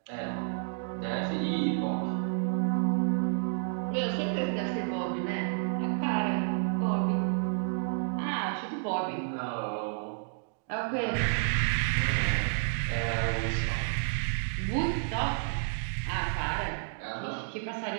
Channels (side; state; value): left; silent; digital silence